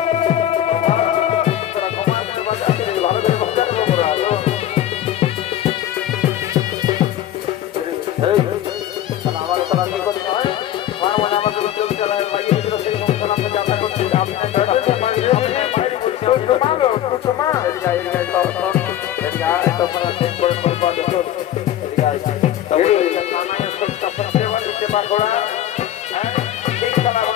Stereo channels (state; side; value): quieter; right; 11.9 dB